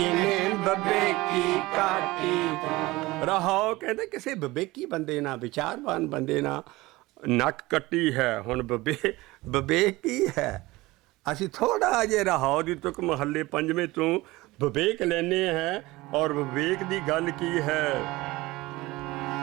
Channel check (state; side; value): quieter; left; 20.2 dB